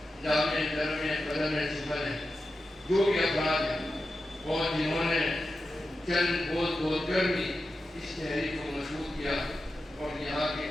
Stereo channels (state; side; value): normal; both; correlation 0.91